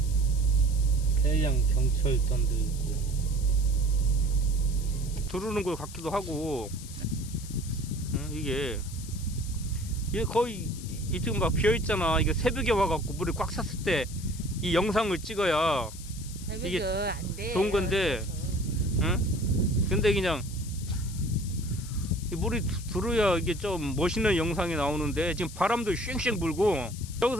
해양 경찰단도 있고. 두르는 것 같기도 하고. 이게 거의 이쪽 막 비어 있잖아. 이게 새벽에 와갖고 물이 꽉 찼을 때 이 영상을 찍어야 이게 안 돼. 좋은 건데, 근데 그냥 이 물이 들어야 이게 좀 멋있는 영상이 나오는데 지금 바람도 쉥쉥 불고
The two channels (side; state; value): left; noise; hiss, 15 dB below the sound